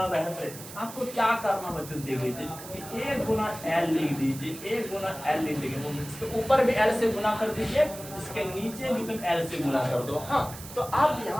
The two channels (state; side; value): noise; right; hiss, 14 dB below the sound